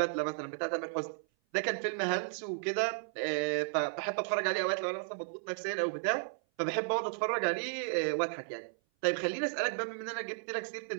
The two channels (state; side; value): silent; left; 55 dB below the other